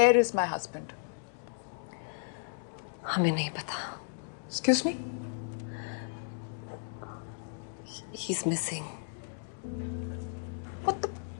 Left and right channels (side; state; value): right; silent; digital silence